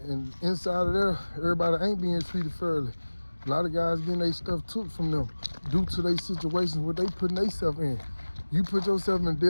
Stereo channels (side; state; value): both; inverted; correlation -1.00